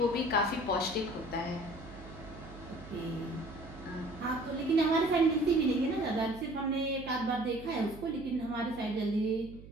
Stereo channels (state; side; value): noise; right; hum, 16 dB below the sound